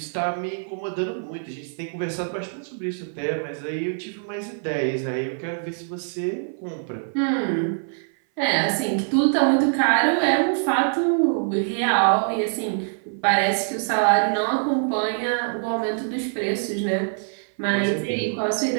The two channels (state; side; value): silent; left; 57 dB below the other